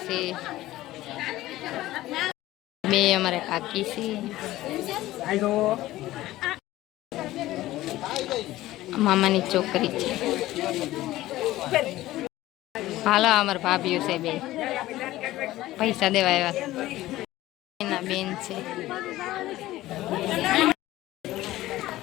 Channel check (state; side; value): quieter; right; 16.2 dB